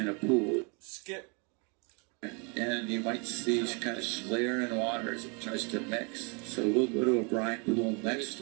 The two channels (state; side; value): quieter; left; 33.3 dB